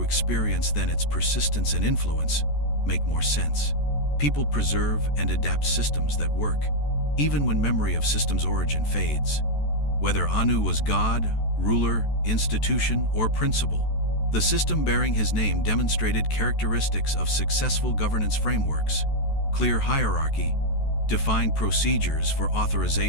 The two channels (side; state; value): right; late; 14 ms